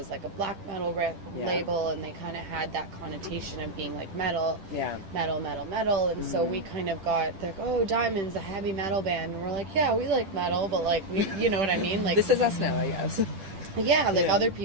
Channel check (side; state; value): left; late; 10 ms